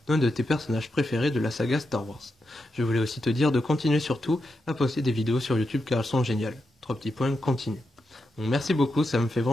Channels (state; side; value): normal; both; correlation 0.86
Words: d'un de tes personnages préférés de la saga Star Wars. Je voulais aussi te dire de continuer surtout à poster des vidéos sur YouTube car elles sont géniales. 3 petits points, continue. Donc, merci beaucoup, ça me fait